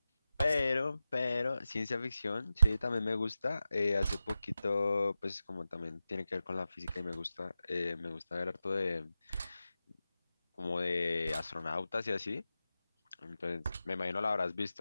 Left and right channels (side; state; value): both; inverted; correlation -0.92